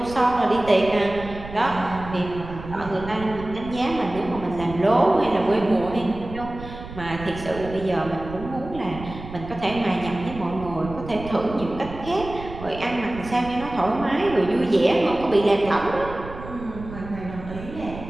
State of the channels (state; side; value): noise; right; rumble, 13 dB below the sound